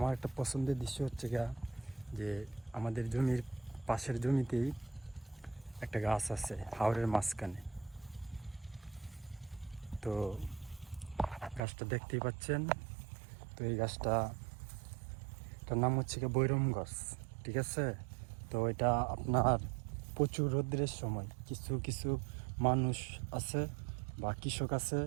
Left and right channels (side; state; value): left; drops out; at 11.6 s